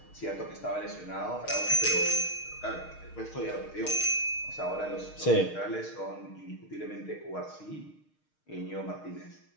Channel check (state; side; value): late; right; 6.5 ms